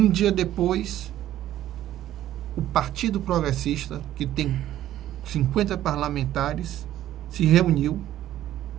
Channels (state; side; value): quieter; left; 12.9 dB